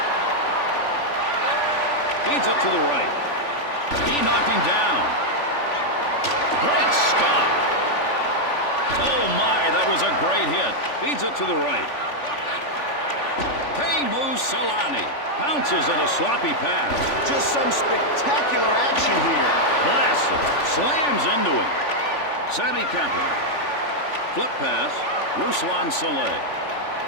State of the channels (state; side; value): late; right; 3.5 ms